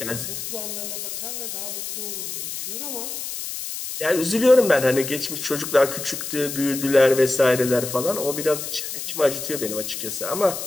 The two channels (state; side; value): noise; left; hiss, 6 dB below the sound